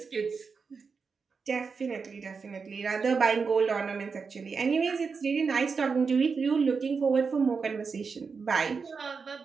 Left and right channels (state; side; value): quieter; left; 5.2 dB